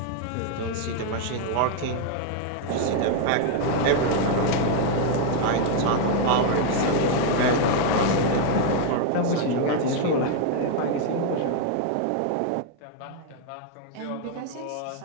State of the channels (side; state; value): both; different; correlation 0.00